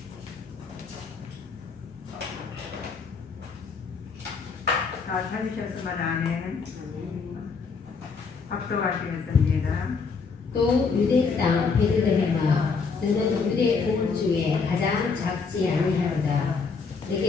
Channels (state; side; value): quieter; right; 5.1 dB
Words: 다 찾으셨으면 아멘. 합독하시겠습니다. 또 유대 땅 베들레헴아, 너는 유대 온 중에 가장 작지 아니하로다.